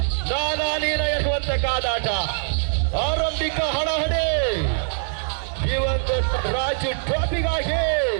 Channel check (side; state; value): left; silent; digital silence